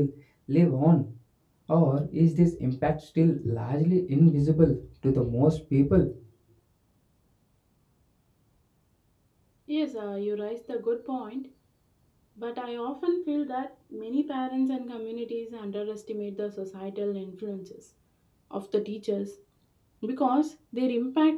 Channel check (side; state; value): both; identical; correlation 1.00